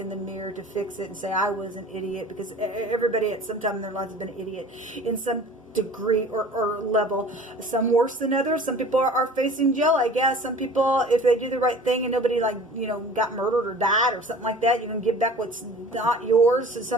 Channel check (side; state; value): both; normal; correlation 0.44